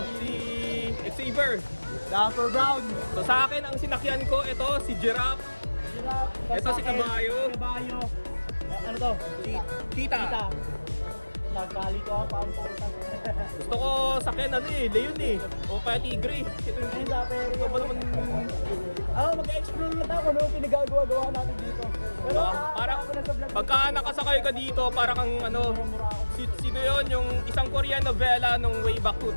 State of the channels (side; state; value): both; inverted; correlation -1.00